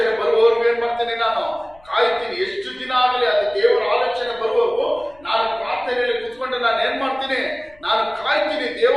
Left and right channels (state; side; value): noise; left; rumble, 28 dB below the sound